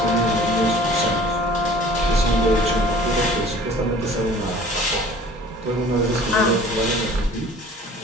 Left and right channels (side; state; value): both; normal; correlation 0.48